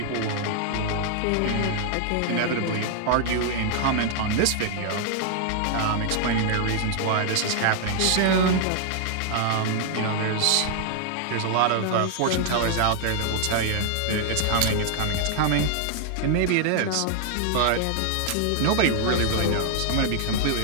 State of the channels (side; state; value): both; different; correlation 0.00